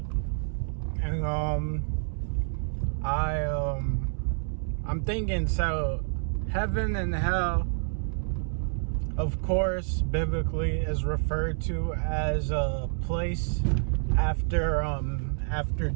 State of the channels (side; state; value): left; silent; 59 dB below the other